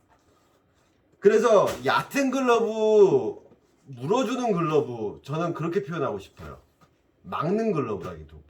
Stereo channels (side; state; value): both; identical; correlation 1.00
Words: 그래서 얕은 글러브, 물어주는 글러브, 저는 그렇게 표현하고 싶어요. 막는